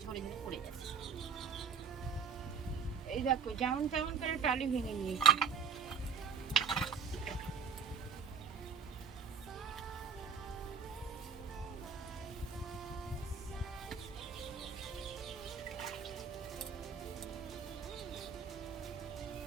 ঝরে ঝরে পড়ে যাচ্ছে। এই দেখো যেমন তেমন করে টালি ভেঙে নিয়েছি।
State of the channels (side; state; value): left; quieter; 6.1 dB